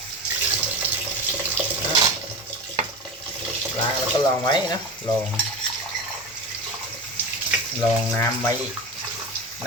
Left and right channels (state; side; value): normal; both; correlation 0.26